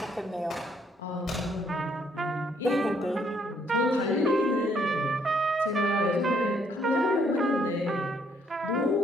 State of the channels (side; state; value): both; normal; correlation 0.68